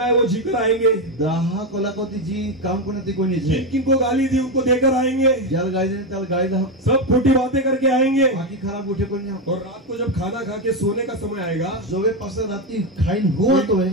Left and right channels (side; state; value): both; normal; correlation 0.10